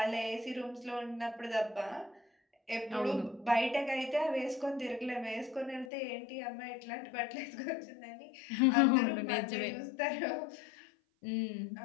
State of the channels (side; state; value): right; drops out; at 5.9 s